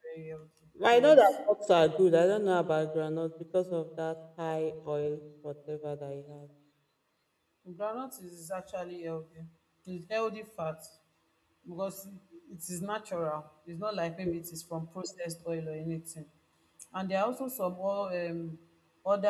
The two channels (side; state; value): both; identical; correlation 1.00